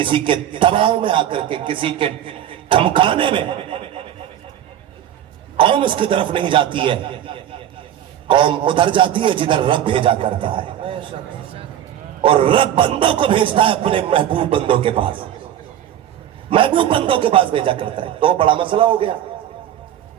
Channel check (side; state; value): left; quieter; 11.0 dB